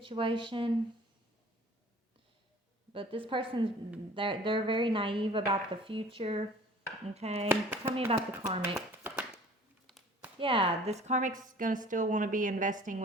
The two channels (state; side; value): normal; both; correlation 0.48